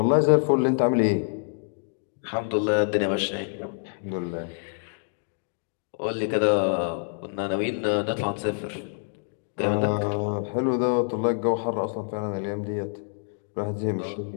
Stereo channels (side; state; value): right; silent; digital silence